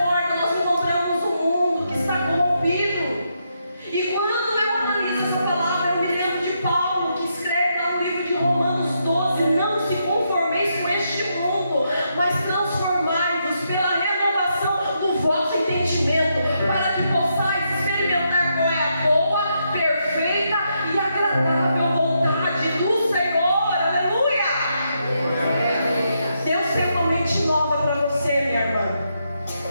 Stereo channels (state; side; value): inverted; both; correlation -0.80